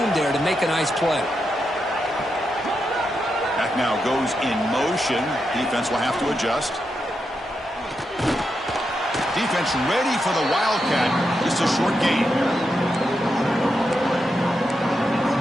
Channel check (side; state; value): both; normal; correlation 0.85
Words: there to make a nice play. Back now goes in motion. Defense will have to adjust. Defense ready for the wildcat. Just a short gain.